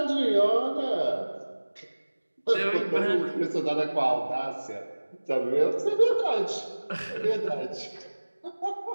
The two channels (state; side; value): inverted; both; correlation -1.00